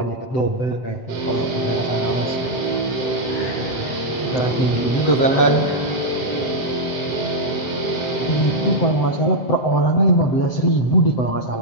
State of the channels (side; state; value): right; late; 7.8 ms